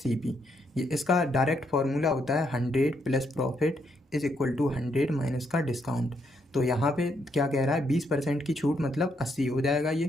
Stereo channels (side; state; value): both; normal; correlation 0.76